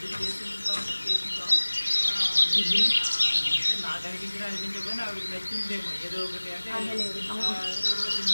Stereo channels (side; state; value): both; inverted; correlation -1.00